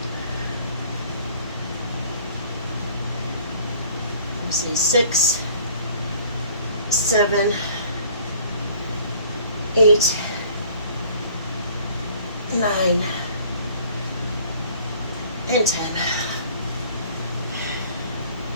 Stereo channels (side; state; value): both; inverted; correlation -0.53